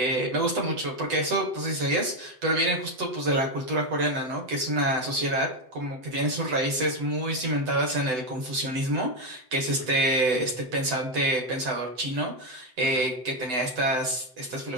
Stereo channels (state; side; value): late; left; 8.0 ms